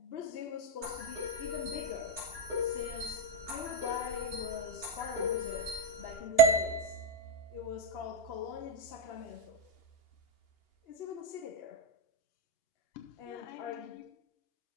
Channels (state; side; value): late; right; 2.8 ms